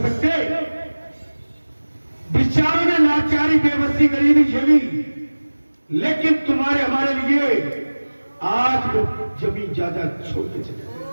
सकते? बेचारों ने लाचारी बेबसी गरीबी झेली, लेकिन तुम्हारे हमारे लिए आज वो जमीन जायदाद छोड़ के चले।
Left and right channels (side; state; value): both; inverted; correlation -1.00